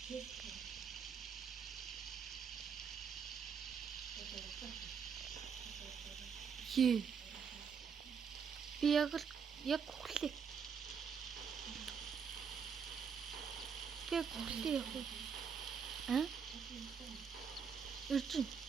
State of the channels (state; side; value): quieter; left; 6.5 dB